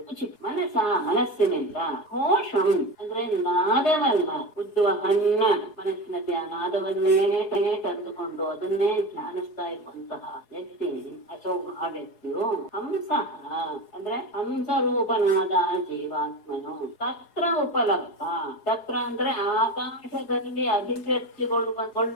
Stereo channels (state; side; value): late; right; 4.8 ms